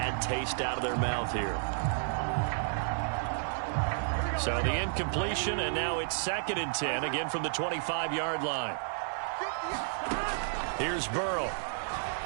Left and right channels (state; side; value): silent; left; digital silence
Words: taste out of their mouth here? So the incompletion, and now it's 2nd and 10, again from the 25-yard line. Here's Burrow.